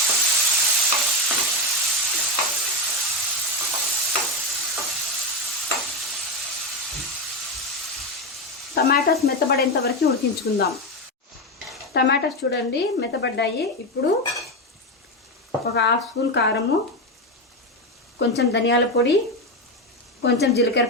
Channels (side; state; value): both; normal; correlation 0.12